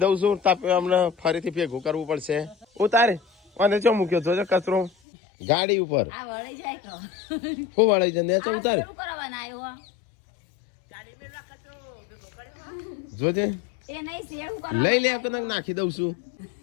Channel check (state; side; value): drops out; right; at 4.9 s